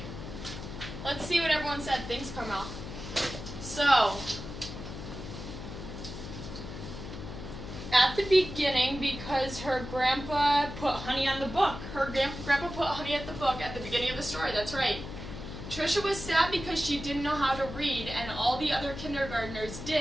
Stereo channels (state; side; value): noise; left; hum, 10 dB below the sound